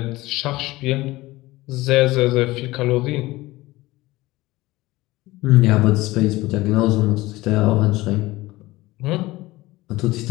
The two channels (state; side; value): quieter; right; 19.1 dB